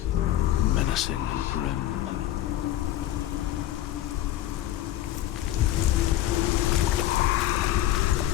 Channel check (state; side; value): quieter; right; 13.4 dB